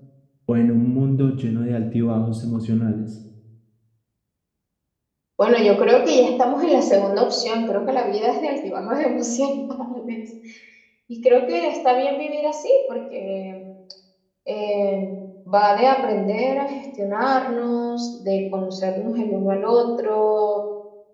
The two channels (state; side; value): identical; both; correlation 1.00